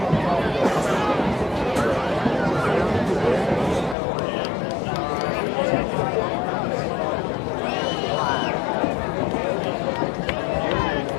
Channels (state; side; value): drops out; right; at 4.0 s